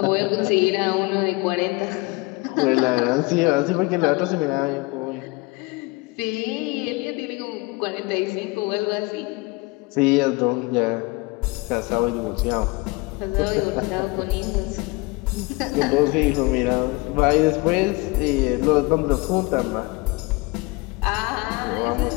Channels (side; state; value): right; quieter; 24.4 dB